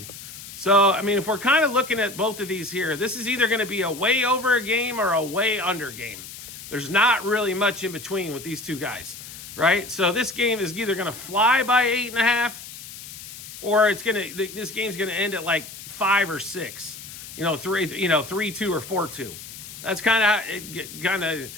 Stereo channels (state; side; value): noise; left; hiss, 13 dB below the sound